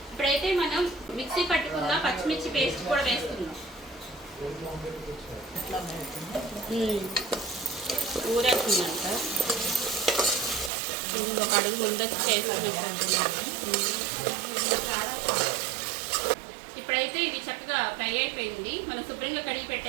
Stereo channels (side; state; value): left; drops out; at 10.7 s